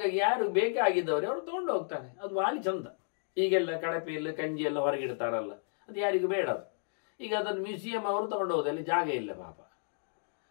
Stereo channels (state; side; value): silent; right; digital silence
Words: ಯಾರು ಬೇಕಾಗಿದ್ದವರು ಅವರು ತಗೊಂಡು ಹೋಗ್ತಾರೆ. ಅದು ಭಾಳ ಚಂದ. ಈಗೆಲ್ಲ ಕಡಪೆಯಲ್ಲಿ ಕಂಜಿ ಎಲ್ಲ ಹೊರಗಿಡ್ತಾರಲ್ಲ, ಅದು ಯಾರಿಗೂ ಬೇಡ. ಅದು ಈಗ ಅದನ್ನು ಮ್ಯೂಸಿಯಂ ಅವರು ತಗೊಂಡು ಹೋಗೋದು, ಅಲ್ಲಿ ಜಾಗ ಇಲ್ಲ ಪಾಪ.